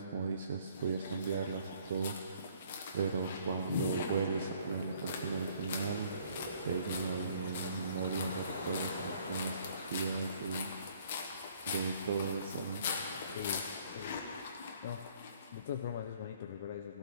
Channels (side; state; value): both; inverted; correlation -0.60